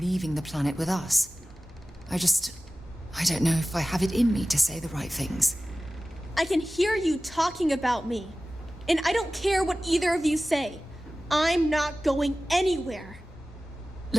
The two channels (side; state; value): both; normal; correlation 0.96